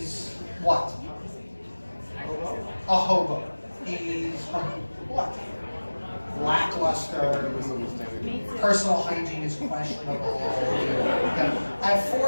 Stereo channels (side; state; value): both; inverted; correlation -1.00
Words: what? A hobo. He's what? Lackluster. Personal hygiene is questionable. At